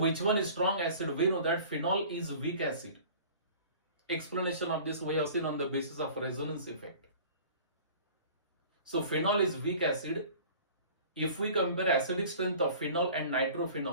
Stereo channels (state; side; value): inverted; both; correlation -0.45